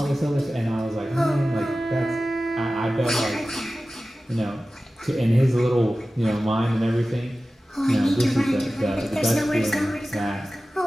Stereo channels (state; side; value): normal; both; correlation 0.95